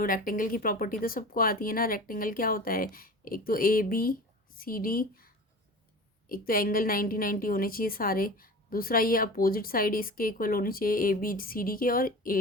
रेक्टेंगल की प्रॉपर्टी तो सबको आती है ना। रेक्टेंगल क्या होता है, एक तो ABCD, एक तो एंगल 90 90 होने चाहिए सारे, दूसरा ये अपोजिट साइड इसके इक्वल होनी चाहिए ABCD के और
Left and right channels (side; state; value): both; normal; correlation 0.36